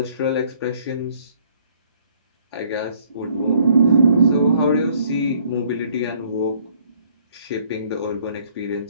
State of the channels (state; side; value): inverted; both; correlation -0.62